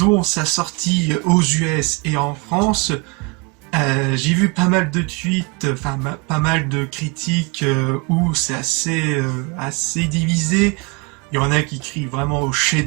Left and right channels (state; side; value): quieter; left; 28.9 dB